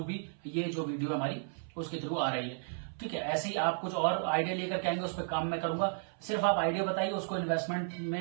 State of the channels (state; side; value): silent; left; 55 dB below the other